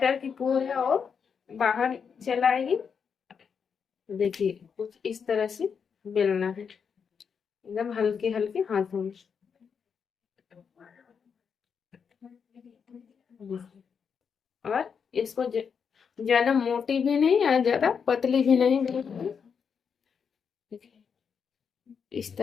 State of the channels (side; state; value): right; quieter; 6.5 dB